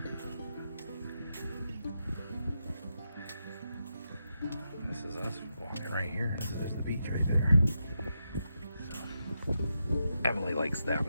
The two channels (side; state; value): both; inverted; correlation -0.86